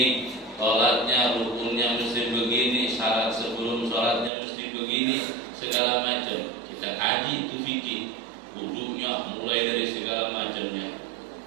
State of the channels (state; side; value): drops out; left; at 4.3 s